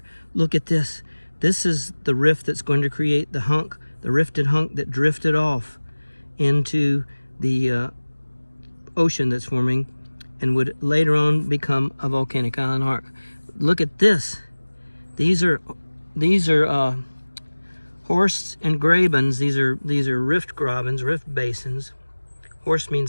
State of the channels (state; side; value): inverted; both; correlation -1.00